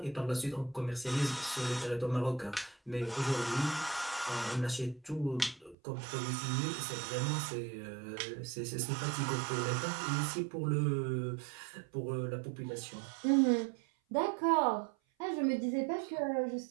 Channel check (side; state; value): left; drops out; at 5.8 s